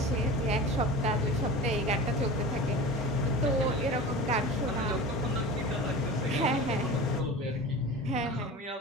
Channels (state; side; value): normal; both; correlation 0.32